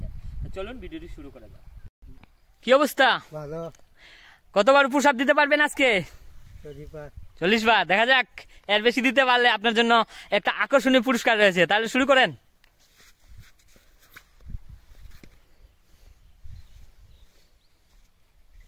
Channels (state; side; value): identical; both; correlation 1.00